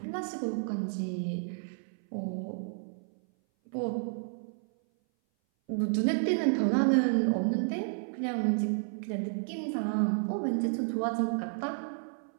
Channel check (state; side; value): silent; left; 57 dB below the other